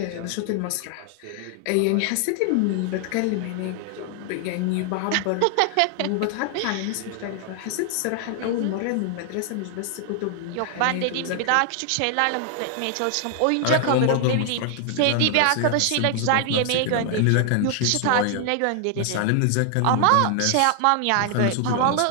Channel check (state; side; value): different; both; correlation 0.00